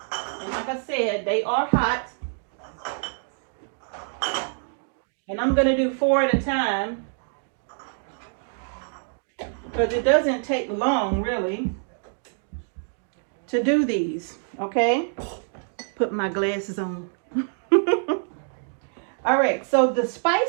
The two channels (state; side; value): silent; left; digital silence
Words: like I said, they are hot. And I'm going to do 4 at a time, because it doesn't take long really to do these. Okay, put my glasses on. All right, so the